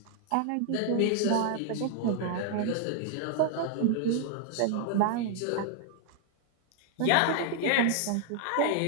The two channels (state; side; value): different; both; correlation 0.00